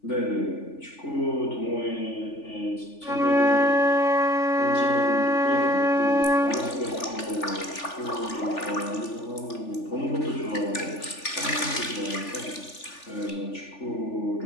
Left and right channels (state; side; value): late; right; 3.4 ms